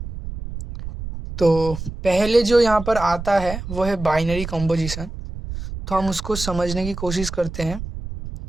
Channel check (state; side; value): noise; right; rumble, 9 dB below the sound